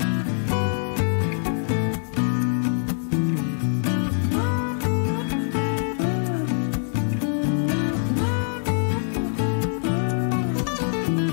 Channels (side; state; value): right; silent; digital silence